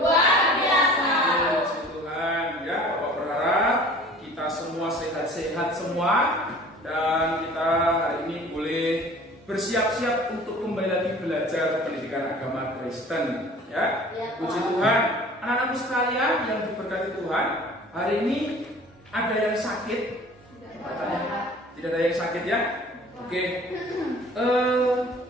biasa. Puji Tuhan, ya, Bapak berharap kita semua sehat-sehat semua dan kita hari ini boleh bersiap-siap untuk kembali lagi belajar pendidikan agama Kristen, ya. Puji Tuhan, anak-anakku sekalian yang diberkati Tuhan, hari ini ada yang sakit? Tidak ada yang sakit, ya? Oke.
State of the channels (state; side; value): normal; both; correlation 0.46